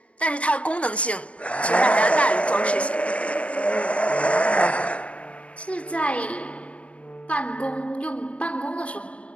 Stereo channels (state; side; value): late; right; 0.063 ms